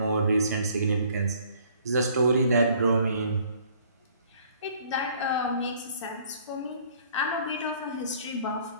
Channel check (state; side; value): inverted; both; correlation -0.58